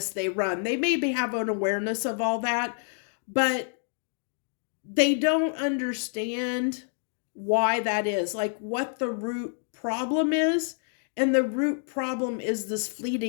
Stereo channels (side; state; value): right; silent; 59 dB below the other